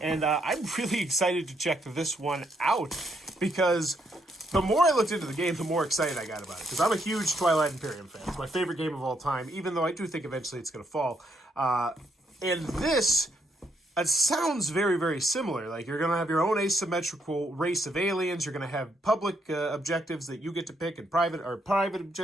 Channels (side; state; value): both; normal; correlation 0.75